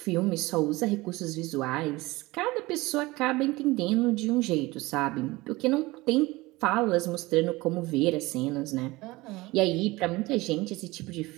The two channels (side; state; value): left; quieter; 21.0 dB